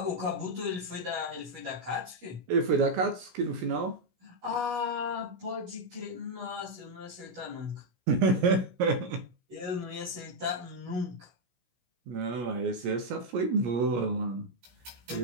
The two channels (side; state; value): left; late; 17 ms